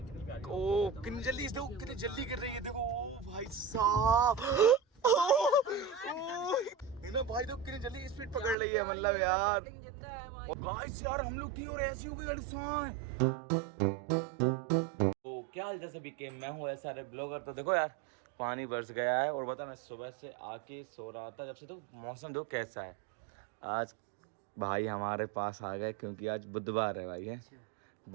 प्यारी। ओ कितनी जल्दी देखो, कितनी जल्दी कर रही है देखो। ओ भाई साहब ना भाई तो कितनी जल्दी स्पीड पकड़ रही है, मतलब यार गाइस यार हम लोग की और ऐसी हो गई गाड़ी साइन। तो क्या हाल सभी के, मैं हूँ ऐसा ब्लॉगर। तो देखो यार पानी बरस गया है और बता मैं सुबह से आके सो रहा था जब से, तो मौसम देखो कैसा है। आज भाई हमारे पास आ गए क्योंकि आज बुधवार है भाई, है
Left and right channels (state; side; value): drops out; left; at 8.6 s